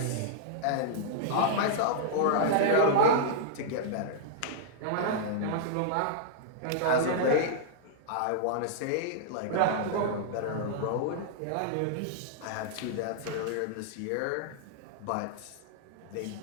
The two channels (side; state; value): both; different; correlation -0.02